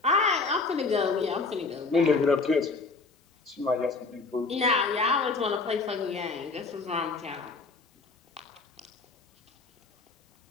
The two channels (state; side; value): quieter; right; 4.0 dB